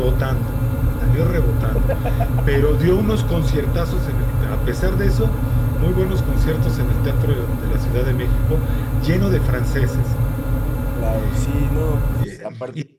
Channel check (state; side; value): identical; both; correlation 1.00